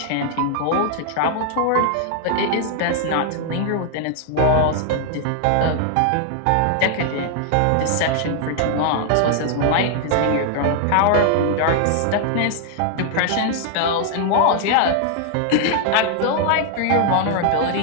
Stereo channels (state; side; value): different; both; correlation 0.00